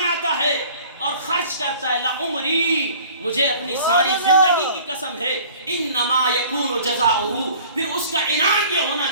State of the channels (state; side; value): inverted; both; correlation -0.48